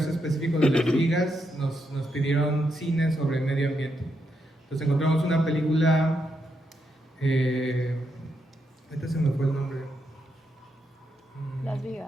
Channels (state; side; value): normal; both; correlation 0.81